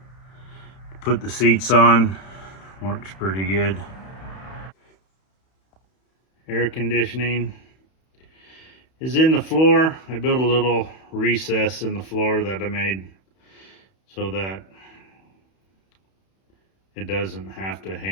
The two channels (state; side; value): late; right; 31 ms